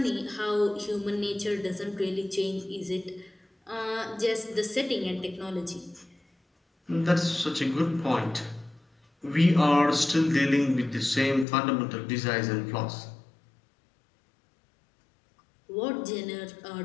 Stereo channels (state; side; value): drops out; right; at 11.5 s